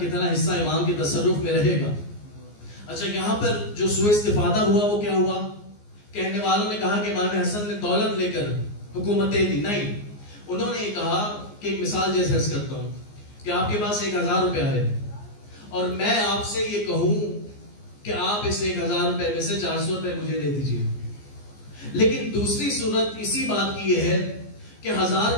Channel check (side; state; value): right; late; 14 ms